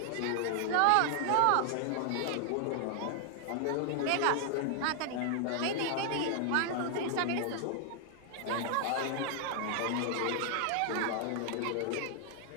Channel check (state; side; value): different; both; correlation 0.00